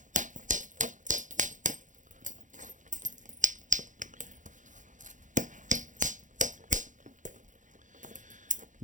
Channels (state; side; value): late; left; 0.37 ms